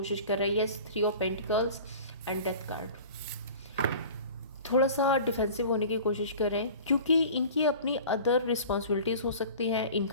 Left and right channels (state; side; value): inverted; both; correlation -0.41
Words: कर रही है। Yes, 3 of pentacles and death card. थोड़ा सा डिफेंसिव होने की कोशिश कर रहे हैं क्योंकि इनकी अपनी अदर रिस्पॉन्सिबिलिटीज़ हो सकती हैं।